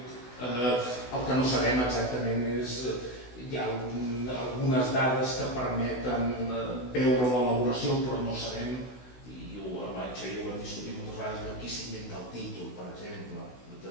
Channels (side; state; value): right; late; 16 ms